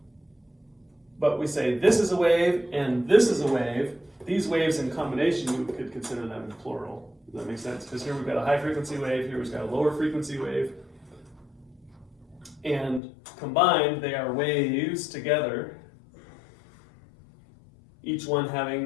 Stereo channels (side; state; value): right; drops out; at 13.0 s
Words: but we say this is a wave and this is a wave. These waves in combination, you could consider them in plural. Does that make sense? Because here we've got a high frequency wave, here we've got a lower frequency wave. And combined, they are waves together, each one